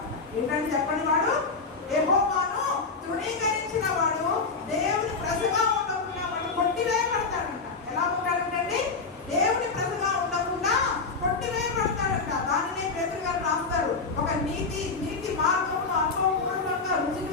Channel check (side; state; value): right; quieter; 4.4 dB